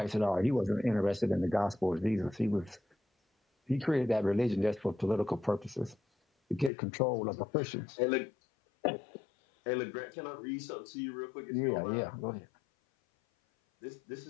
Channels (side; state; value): right; drops out; at 6.7 s